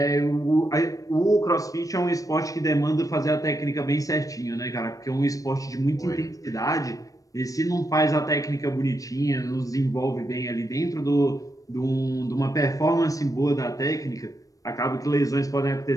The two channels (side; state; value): right; late; 0.16 ms